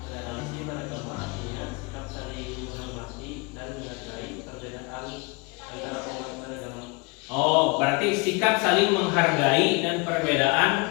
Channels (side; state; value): right; quieter; 29.8 dB